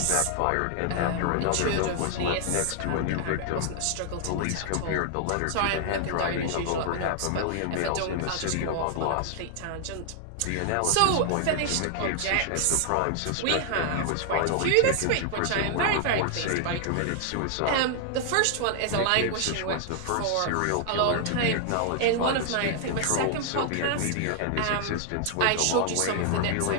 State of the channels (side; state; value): both; different; correlation 0.00